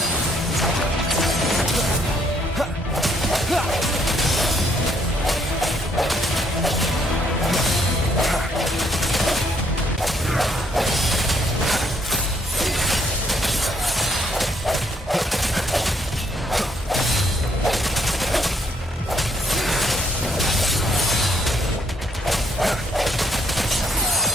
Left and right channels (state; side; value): normal; both; correlation 0.69